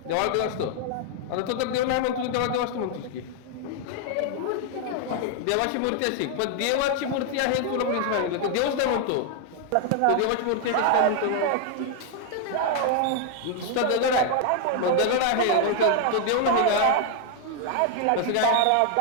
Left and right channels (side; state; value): both; different; correlation 0.00